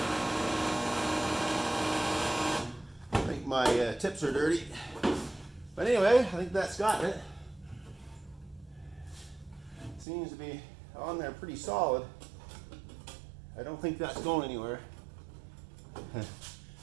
My tips are dirty, but anyway, I think that's got it. Seems to be on there pretty solid. I don't think that's going anywhere.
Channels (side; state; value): left; drops out; at 10.1 s